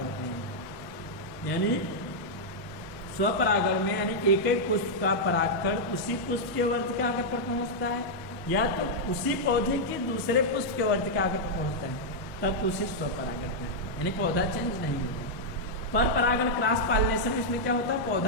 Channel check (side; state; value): both; normal; correlation -0.05